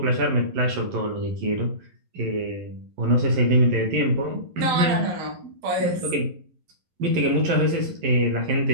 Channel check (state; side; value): late; left; 11 ms